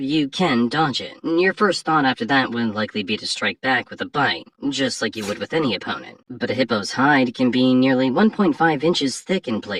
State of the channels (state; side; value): identical; both; correlation 1.00